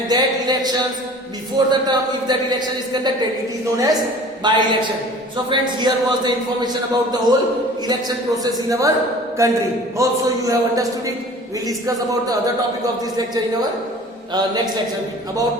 that elections before the term, if that election is conducted, it is known as by-election. So friends, here was the information about the whole election process in our country. Hope so you have understood it. We will discuss about the other topic of this lecture in our next lecture,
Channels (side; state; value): both; normal; correlation 0.45